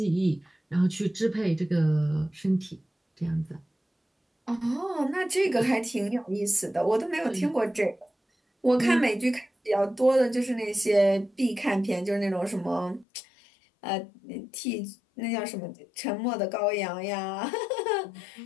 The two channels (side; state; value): right; drops out; at 13.1 s